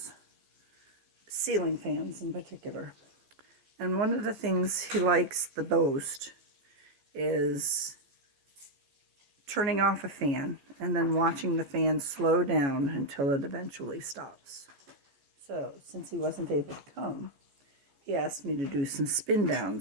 ceiling fans in particular. And one of the things he likes the most is turning off a fan and then watching the fan slow down until it eventually stops. So, since he wasn't able to come, he asked me to do some spin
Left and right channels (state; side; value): late; left; 14 ms